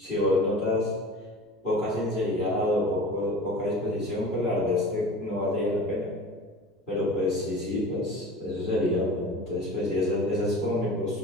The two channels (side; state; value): both; normal; correlation 0.38